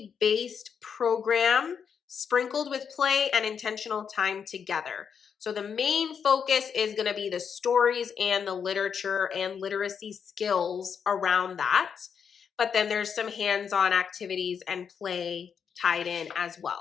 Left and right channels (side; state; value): right; quieter; 7.0 dB